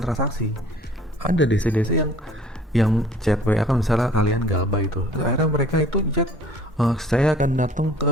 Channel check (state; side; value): normal; both; correlation 0.52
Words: transaksi. Ada DC-DC yang yang chat WA kan misalnya kalian galbay itu, akhirnya mereka itu chat, saya akan datang